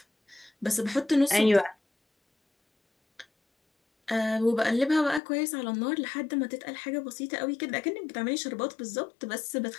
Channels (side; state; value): right; drops out; at 5.2 s